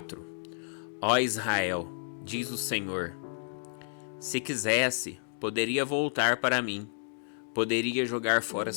Ó Israel, diz o Senhor, se quisesse, poderia voltar para mim, poderia jogar fora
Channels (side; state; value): right; silent; digital silence